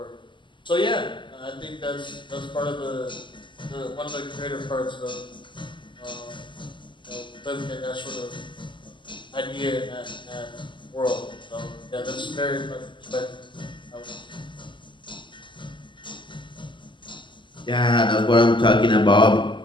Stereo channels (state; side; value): late; right; 0.24 ms